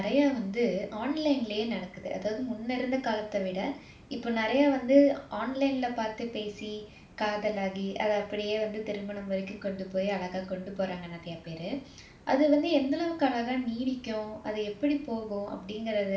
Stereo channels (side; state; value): both; identical; correlation 1.00